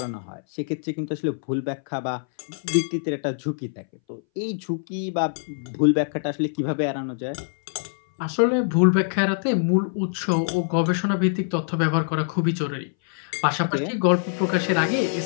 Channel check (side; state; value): right; silent; 61 dB below the other